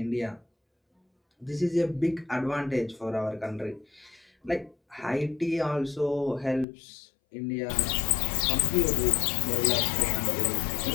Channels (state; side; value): drops out; right; at 6.7 s